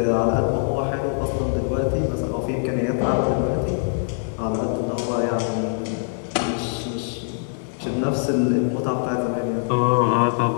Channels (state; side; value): silent; right; digital silence